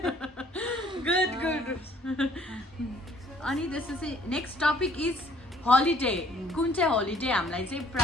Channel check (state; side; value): normal; both; correlation 0.59